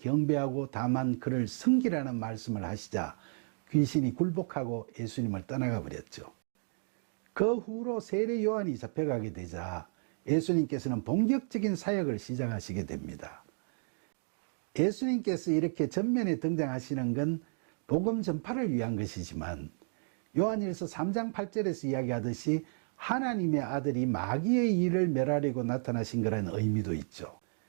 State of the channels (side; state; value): left; silent; 56 dB below the other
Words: 다만 그를 섬기라는 말씀을 하시자 귀신이 굴복하고 예수님을 떠나가 버렸죠. 그 후로 세례 요한이 잡혀가게 되자 예수님께서는 본격적인 사역을 시작하시게 됩니다. 예수님께서 이렇게 전면에 등장하시는 건 복음 전파를 위한 것이지만, 요한일서 3장 8절에서 이야기하듯이 하나님의 아들이 마귀의 일을 멸하려고 나타나신 거라는 의미도 있죠.